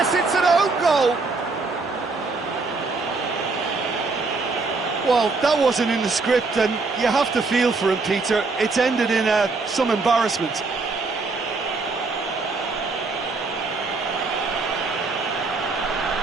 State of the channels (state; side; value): quieter; left; 3.9 dB